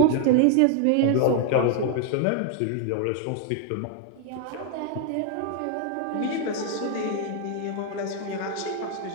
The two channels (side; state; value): both; different; correlation 0.01